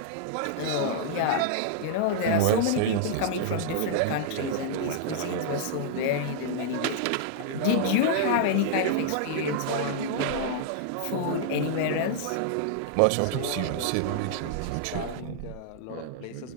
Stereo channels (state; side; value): different; both; correlation -0.01